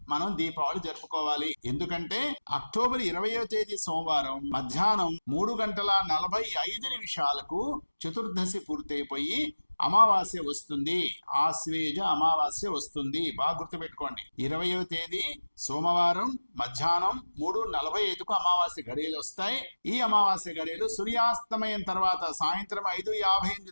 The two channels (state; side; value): inverted; both; correlation -1.00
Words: మనం దీపావళి జరుపుకోవాలి. ఎందుకంటే అక్టోబర్ 20వ తేదీ సోమవారం మధ్యాహ్నం 3:45 చతుర్దశి పూర్తయిపోయి అమావాస్య వస్తుంది. ఆశ్వేజ అమావాస్య వస్తుంది. బాగా గుర్తుపెట్టుకోండి. 20వ తేదీ సోమవారం మధ్యాహ్నం 3:45 అమావాస్య గడియలు వస్తాయి. ఈ అమావాస్య గడియలు సూర్యాస్తమయం తర్వాత సాయంత్రం